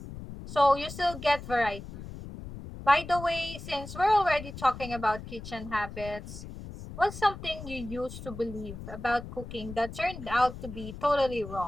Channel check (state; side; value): noise; left; rumble, 12 dB below the sound